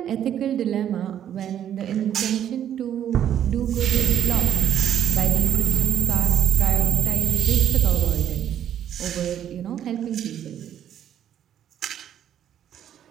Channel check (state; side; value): quieter; left; 10.2 dB